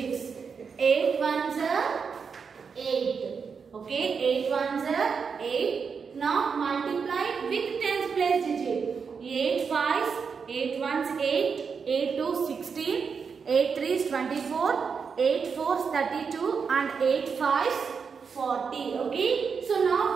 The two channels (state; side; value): quieter; left; 5.8 dB